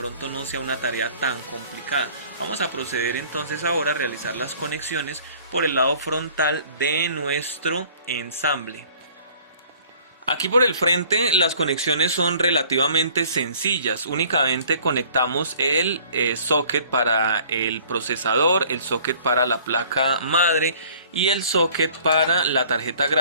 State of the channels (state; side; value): inverted; both; correlation -0.53